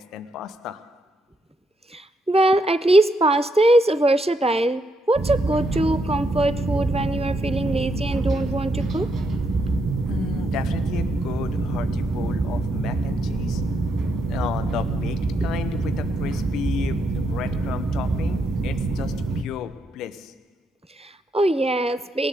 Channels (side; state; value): both; normal; correlation 0.78